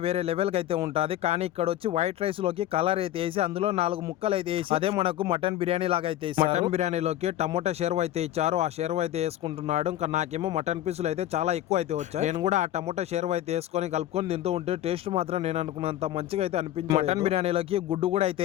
వేరే లెవెల్ కి అయితే ఉంటది, కానీ ఇక్కడ వచ్చి వైట్ రైస్ లోకి కలర్ అయితే వేసి అందులో 4 ముక్కలు అయితే వేసి అదే మనకు మటన్ బిర్యానీ లాగా అయితే మటన్ బిర్యానీలోకి టమోటా షెర్వ అయితే ఇచ్చారు. ఆ షెర్వ అయితే వేసుకుంటున్నాడు. ఇంకా నాకేమో మటన్ పీసులు అయితే చాలా ఎక్కువ అయితే వచ్చాయి. నేను కూడా ఆ టమోటా షెర్వ అయితే వేసుకొని కలుపుకొని తింటూ ఉంటే టేస్ట్ మాత్రం నేను అనుకున్నంత మంచిగా అయితే అనిపించింది. మటన్ బిర్యానీలోకి గుడ్డు కూడా అయితే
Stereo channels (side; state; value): right; quieter; 13.2 dB